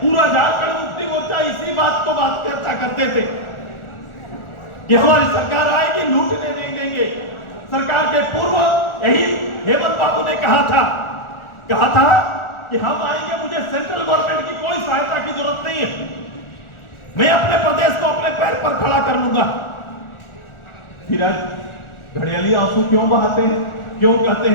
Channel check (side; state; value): right; late; 1.4 ms